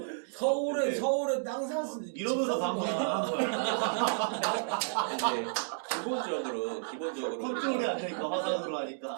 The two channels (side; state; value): left; silent; digital silence